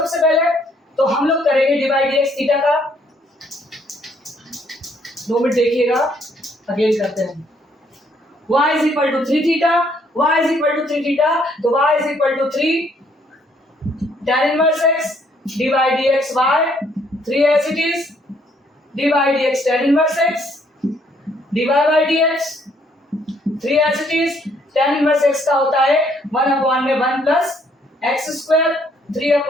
पहले। तो हम लोग करेंगे d by d x theta का। 2 मिनट देखिएगा, अगेन करते हैं। y is equal to 3 theta, y is equal to 3 theta, तो y is equal to 3 tan inverse x d by d x by 3 as it is, d by d x tan inverse x d by d x 3 as it is. tan inverse x का होता है 1 upon में 1 plus x square, 3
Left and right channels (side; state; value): both; normal; correlation 0.67